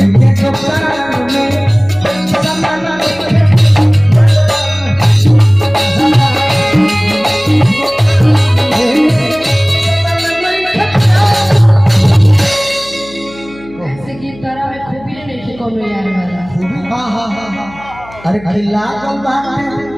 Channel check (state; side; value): noise; left; hum, 20 dB below the sound